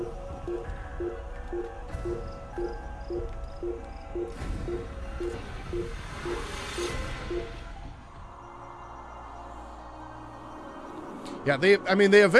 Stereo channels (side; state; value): both; identical; correlation 1.00